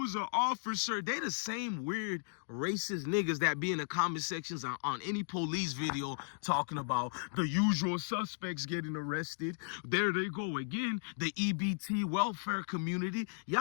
an officer. They the same weird racist niggas that be in the comment sections on any police video talking about the usual suspects getting arrested. There they go again. The EBT welfare community.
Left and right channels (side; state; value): right; silent; digital silence